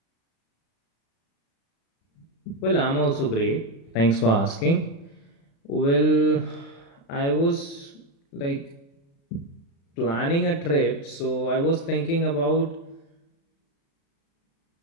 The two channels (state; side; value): late; right; 36 ms